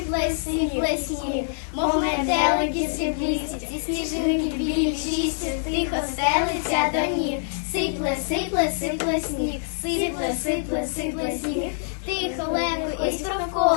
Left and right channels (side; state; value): right; silent; 62 dB below the other